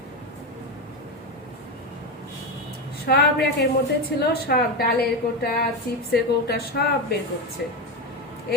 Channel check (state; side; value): normal; both; correlation 0.15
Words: সব র্যাকের মধ্যে ছিল, সব ডালের কোটা, চিপসের কোটা সব বের করছে।